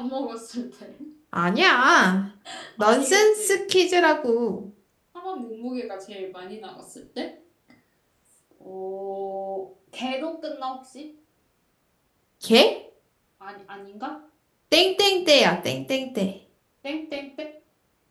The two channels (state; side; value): identical; both; correlation 1.00